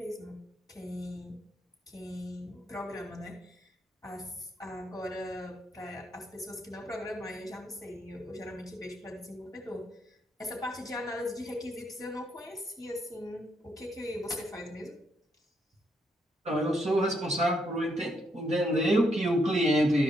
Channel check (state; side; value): normal; both; correlation 0.76